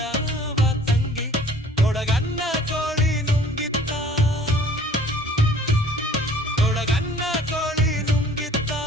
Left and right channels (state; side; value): normal; both; correlation 0.52